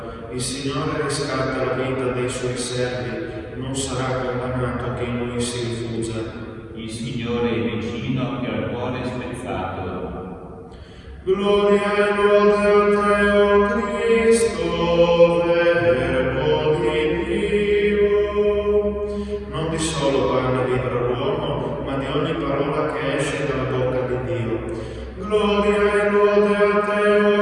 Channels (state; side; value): identical; both; correlation 1.00